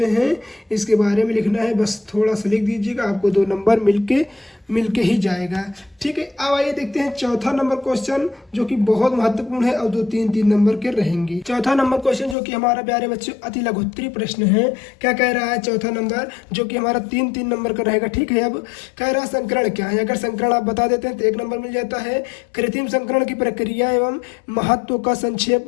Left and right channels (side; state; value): right; drops out; at 12.4 s